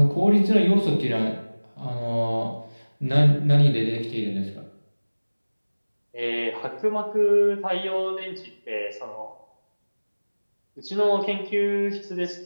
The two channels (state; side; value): inverted; both; correlation -1.00